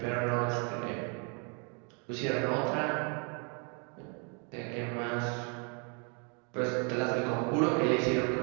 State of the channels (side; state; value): left; quieter; 36.0 dB